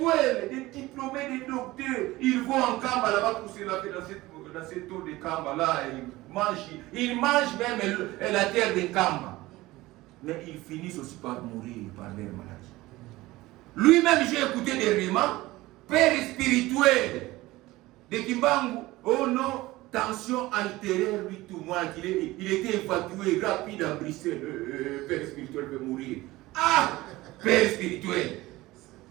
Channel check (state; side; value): quieter; left; 18.8 dB